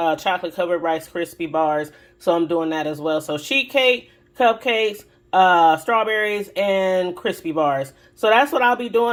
chocolate covered Rice Krispie bars. So I'm doing that as well. So sheet cake, cupcakes, strawberries, and crispy bars. So that's what I'll be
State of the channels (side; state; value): both; identical; correlation 1.00